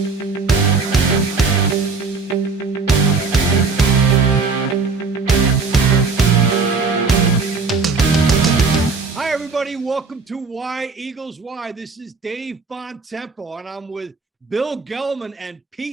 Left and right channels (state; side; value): quieter; left; 4.4 dB